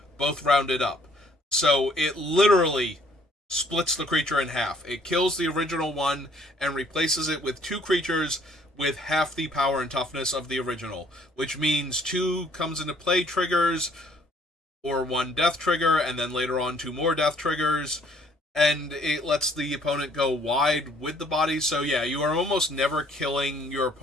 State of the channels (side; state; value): both; normal; correlation 0.62